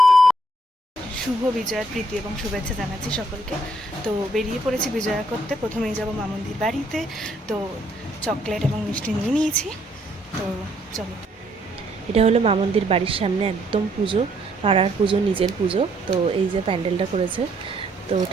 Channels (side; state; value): both; normal; correlation 0.69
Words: বিজয়ার প্রীতি এবং শুভেচ্ছা জানাচ্ছি সকলকে। তো বেরিয়ে পড়েছি বিজয়া করতে। প্রথমেই যাব মামুন্দির বাড়িতে। তো চকলেট এবং মিষ্টি নিয়ে নিয়েছি। তো চলো। এটা হলো মামুন্দির বাড়ির সামনে একদম পুজো, পাড়ার পুজো, নিজের পুজো। তো এই যে প্যান্ডেলটা করেছে, তো